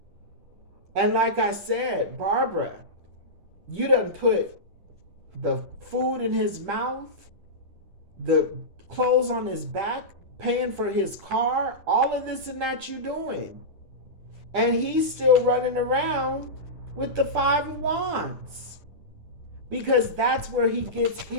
And like I said, Barbara, you done put the food in his mouth, the clothes on his back, paying for his car, all of this and that you doing. And he's still running around with the 5 of Wands. Because that's where he gets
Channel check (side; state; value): left; late; 10 ms